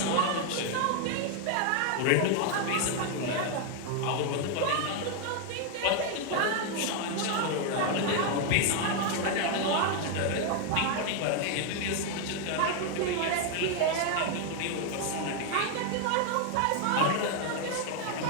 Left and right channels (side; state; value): both; different; correlation 0.01